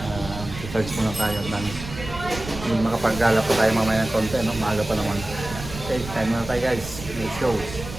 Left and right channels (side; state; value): right; noise; rumble, 11 dB below the sound